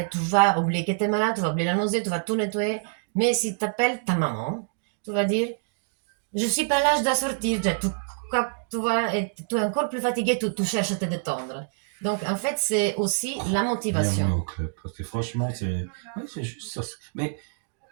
tu vas oublier que t'es malade, tu vas oublier la nausée, tu vas tout nettoyer. Mais si t'appelles ta maman, tu vas dire je suis pas là, je dois sortir. Tu vois, et tu es encore plus fatigué, tu cherches à te détendre. Donc en fait, c'est aussi la Bienvenue motivation. au club. Parce que franchement, oui, c'est juste ça. Mais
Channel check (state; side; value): silent; left; digital silence